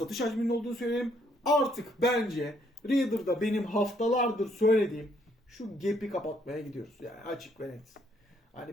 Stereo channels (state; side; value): normal; both; correlation 0.69